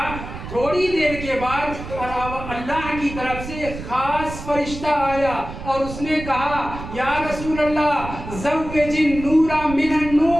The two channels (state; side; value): noise; right; rumble, 10 dB below the sound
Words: تھوڑی دیر کے بعد اللہ کی طرف سے خاص فرشتہ آیا اور اس نے کہا یا رسول اللہ زوج النور من